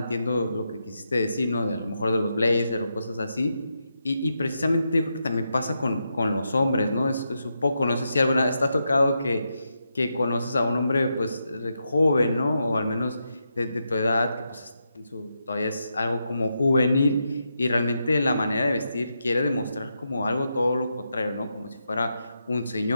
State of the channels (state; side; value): inverted; both; correlation -0.85